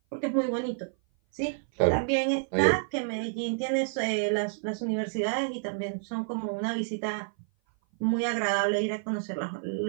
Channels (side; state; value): left; silent; 56 dB below the other